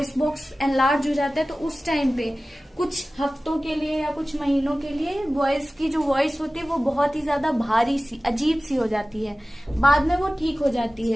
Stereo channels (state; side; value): normal; both; correlation 0.97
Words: बॉक्स एनलार्ज हो जाता है तो उस टाइम पे कुछ हफ्तों के लिए या कुछ महीनों के लिए बॉयज की जो वॉइस होती है वो बहुत ही ज्यादा भारी सी, अजीब सी हो जाती है। बाद में वो ठीक हो जाती